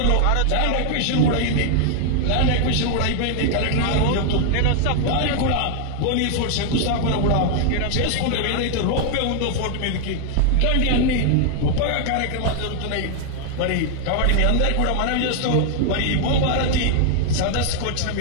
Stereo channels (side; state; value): both; different; correlation 0.00